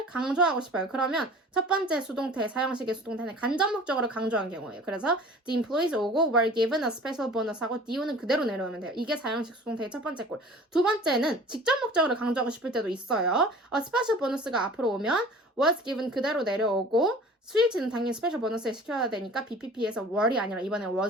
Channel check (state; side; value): normal; both; correlation 0.44